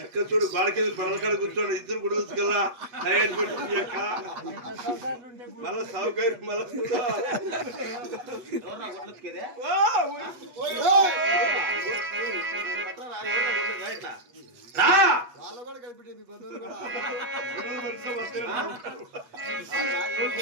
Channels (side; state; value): left; late; 8.2 ms